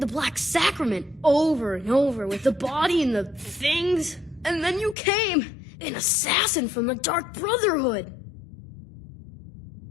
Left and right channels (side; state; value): right; drops out; at 5.0 s